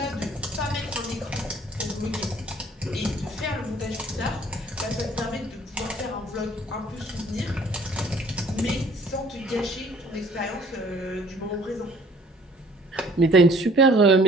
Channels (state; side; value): normal; both; correlation 0.56